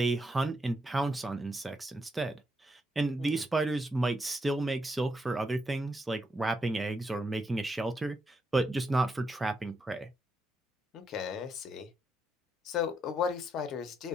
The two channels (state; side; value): normal; both; correlation 0.81